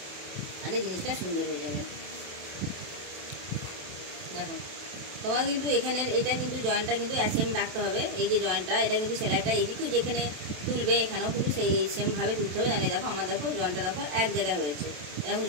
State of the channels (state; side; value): late; left; 27 ms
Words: তাহলে জিনিসটা সুন্দর হয়ে যাবে। দেখো, তোমার কিন্তু এখানের এটা কিন্তু জয়েন্টটা কিন্তু সেম রাখতে হবে। এই যে জয়েন্টটা, এটা কিন্তু সেলাইটা এইদিকেও যেখানে তুলবে এখানেও কিন্তু সেই সেমভাবে তুলতে হবে। জানি দেখো আমার দেখো জয়েন্টটা দেখো এক জায়গায় হয়েছে, এরকম